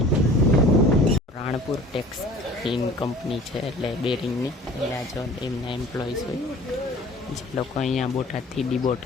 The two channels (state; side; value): normal; both; correlation 0.46